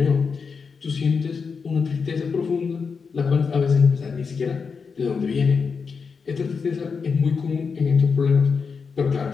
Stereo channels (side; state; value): right; quieter; 5.4 dB